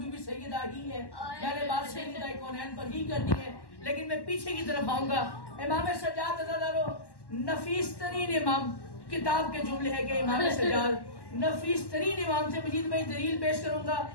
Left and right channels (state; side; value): late; right; 1.1 ms